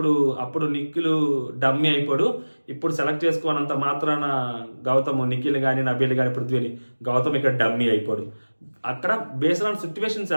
అప్పుడు నిఖిల్ డమ్మీ అయిపోడు, ఇప్పుడు సెలెక్ట్ చేసుకోనంత మాత్రాన నిఖిల్ కానీ నబీల్ కానీ పృథ్వీని గౌతమ్ ఇక్కడ డమ్మీ అయిపోడు. అక్కడ బేస్డ్ ఆన్ సిచ్యువేషన్స్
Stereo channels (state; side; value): inverted; both; correlation -1.00